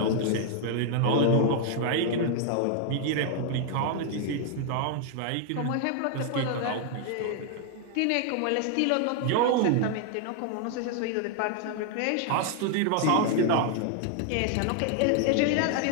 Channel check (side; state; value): both; different; correlation 0.00